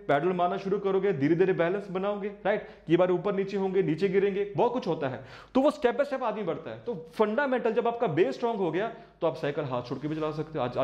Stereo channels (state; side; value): identical; both; correlation 1.00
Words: पैडल मारना शुरू करोगे, धीरे धीरे बैलेंस बनाओगे, राइट, कई बार ऊपर नीचे होंगे, नीचे गिरेंगे, बहुत कुछ होता है। तो वो स्टेप बाय स्टेप आदमी बढ़ता है। तो फंडामेंटल जब आपका बेस स्ट्रांग हो गया तो आप साइकिल हाथ छोड़ के भी चला सकते हो।